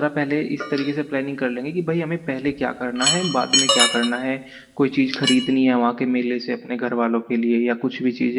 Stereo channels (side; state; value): both; identical; correlation 1.00